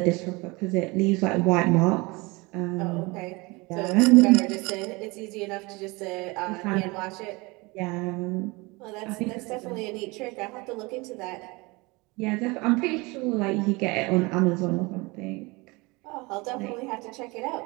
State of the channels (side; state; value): left; quieter; 25.0 dB